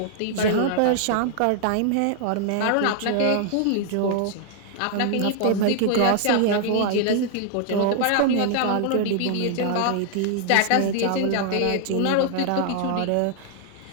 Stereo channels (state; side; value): different; both; correlation 0.00